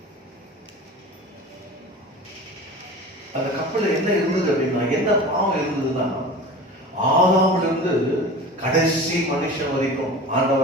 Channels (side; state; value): both; normal; correlation 0.36